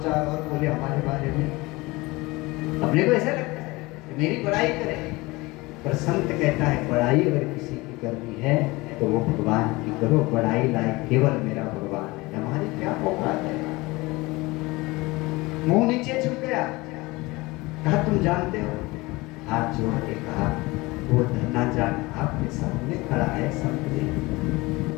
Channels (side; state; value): right; quieter; 22.4 dB